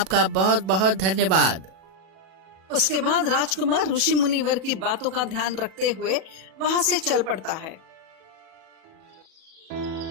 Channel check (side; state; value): left; late; 37 ms